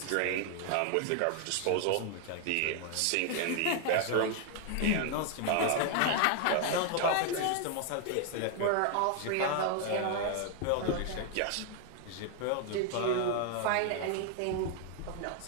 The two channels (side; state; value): both; different; correlation 0.00